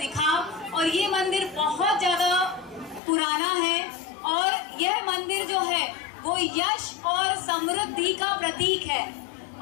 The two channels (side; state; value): right; drops out; at 3.0 s